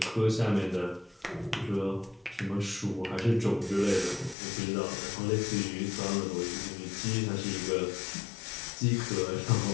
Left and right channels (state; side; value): drops out; right; at 4.4 s